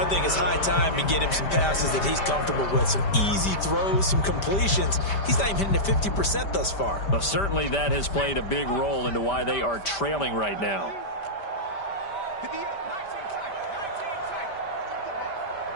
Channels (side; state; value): right; late; 5.1 ms